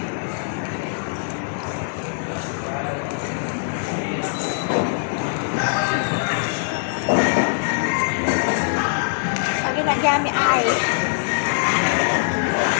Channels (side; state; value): right; silent; 61 dB below the other